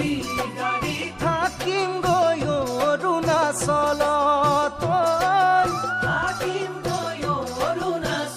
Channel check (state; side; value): identical; both; correlation 1.00